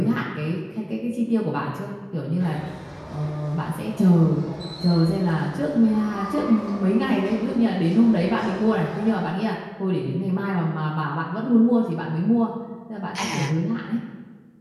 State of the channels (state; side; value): identical; both; correlation 1.00